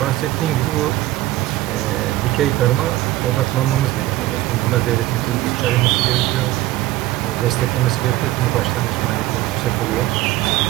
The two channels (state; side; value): quieter; left; 16.4 dB